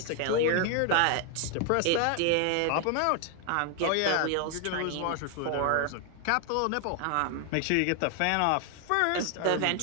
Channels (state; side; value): different; both; correlation 0.00